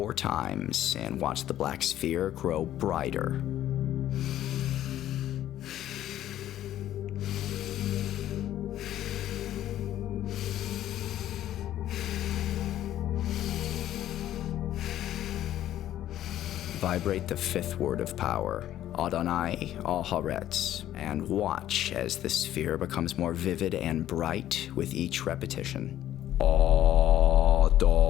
times and watch the black sphere grow brighter. Vibrate the fifth word of power, Adonai Al-Haaretz, and watch as the sphere becomes more vivid and bright with each repetition. Adonai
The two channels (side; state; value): right; quieter; 12.5 dB